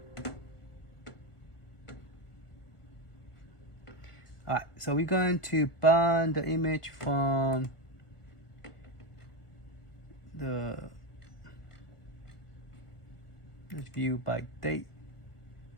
All right, so we're going to burn the image from the, let's view by date.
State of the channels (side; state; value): right; late; 1.4 ms